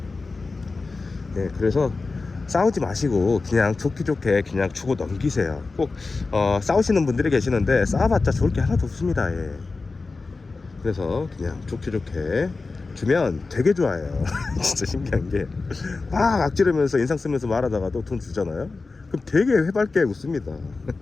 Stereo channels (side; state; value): right; quieter; 3.9 dB